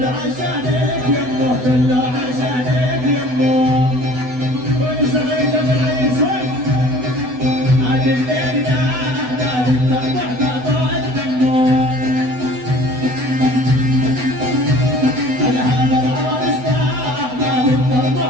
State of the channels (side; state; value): left; late; 8.0 ms